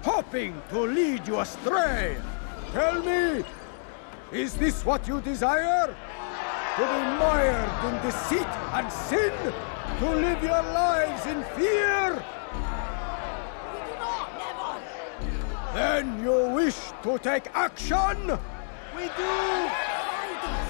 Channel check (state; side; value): silent; right; digital silence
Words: hoping to lead you astray. Tell me, is this what you desire? To be mired in deceit and sin? To live your lives in fear? Then you wish to take action?